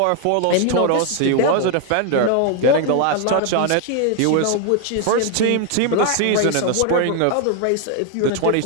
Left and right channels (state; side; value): different; both; correlation 0.00